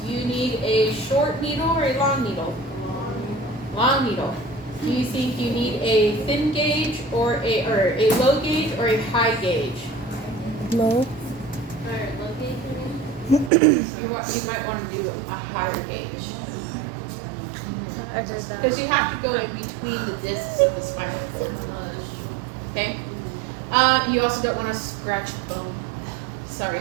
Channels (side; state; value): left; drops out; at 13.5 s